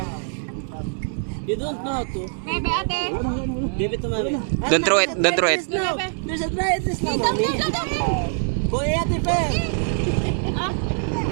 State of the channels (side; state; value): left; silent; 63 dB below the other